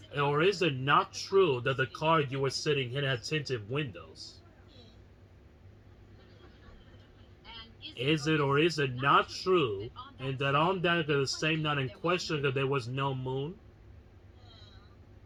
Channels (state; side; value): identical; both; correlation 1.00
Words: or is it not true that the car you were sitting in had tinted windows? Is it or is it not true, and that on that the same night in question that there was no moon?